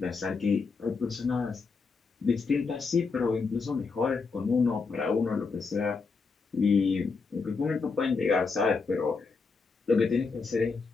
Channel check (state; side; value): quieter; right; 4.6 dB